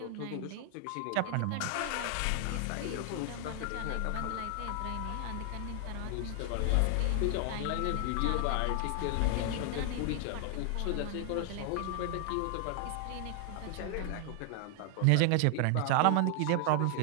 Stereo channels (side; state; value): both; different; correlation 0.00